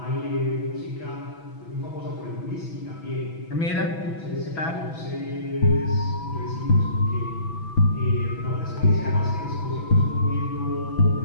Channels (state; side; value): late; right; 6.1 ms